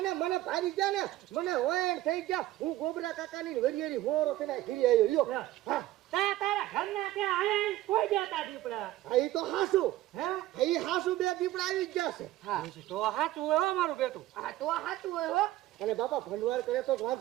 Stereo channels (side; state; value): left; quieter; 15.6 dB